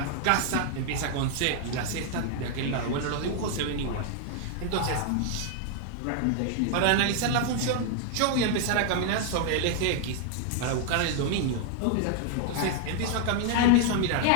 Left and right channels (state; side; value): different; both; correlation 0.00